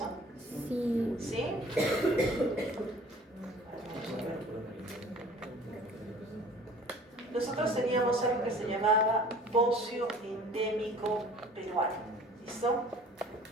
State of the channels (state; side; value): normal; both; correlation 0.48